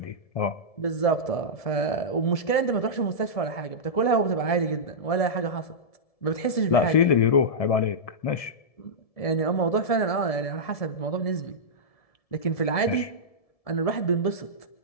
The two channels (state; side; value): late; right; 1.7 ms